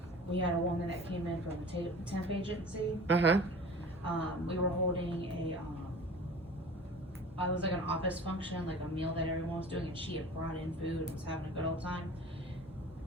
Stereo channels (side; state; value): both; normal; correlation 0.41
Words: We had a woman that came in from a temp agency. We were holding it was like an office function, like a meal that everyone was doing, and she had brought in food and was having a good old time.